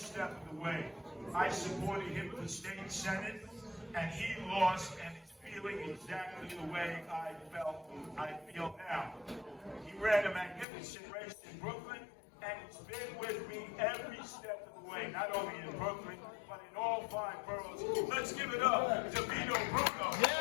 of the way. I supported him in the state senate, and he lost, and is feeling exactly the way I feel now. He ran a magnificent race in Brooklyn, and he's been with me every step of the way, not only in Brooklyn, but in all 5 boroughs. Let's give it up to Vito Bruno.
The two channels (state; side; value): drops out; right; at 10.7 s